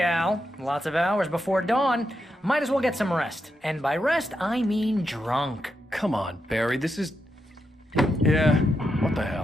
Al. Lots of hours before dawn. Might as well get some rest. And by rest, I mean drunk. Come on, Barry, this is... Yeah, what the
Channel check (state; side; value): normal; both; correlation 0.84